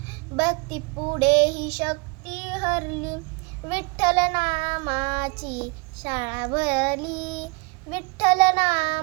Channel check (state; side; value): quieter; left; 30.3 dB